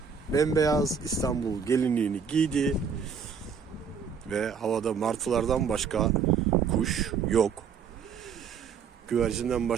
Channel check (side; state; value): left; quieter; 6.4 dB